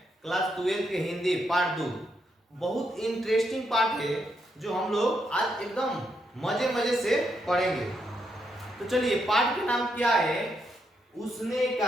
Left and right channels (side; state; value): both; normal; correlation 0.79